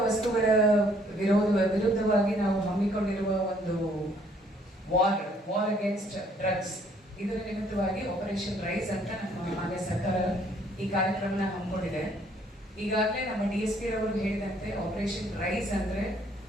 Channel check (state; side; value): normal; both; correlation 0.63